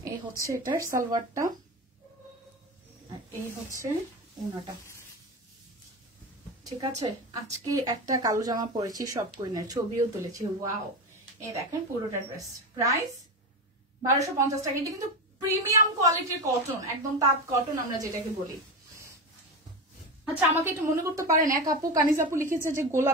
এই হচ্ছে এটার সালোয়ারটা, আর এই হচ্ছে ওনাটা। ঠিক আছে, আজকে একটা কালো জামা পরেছি সব কুইনের, ছবিও তুলেছি। ওয়াও, এই দেখেন পুরোটা ড্রেস, প্রাইস 1250 টাকা। এটা কিন্তু প্রিমিয়াম কোয়ালিটির কটন, একদম তাঁত কটন আমরা যেটাকে বলি। আচ্ছা, আমাকে একটু মনে করতে পারেন, এক আপু কানিজ আপু লিখেছে যে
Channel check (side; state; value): both; normal; correlation 0.20